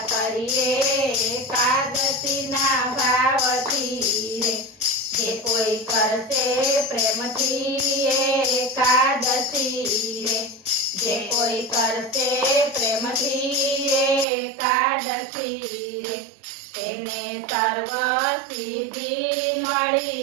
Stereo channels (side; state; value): left; drops out; at 14.2 s